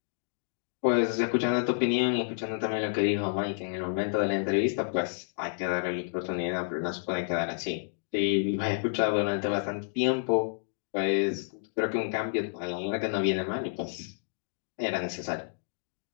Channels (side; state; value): right; silent; digital silence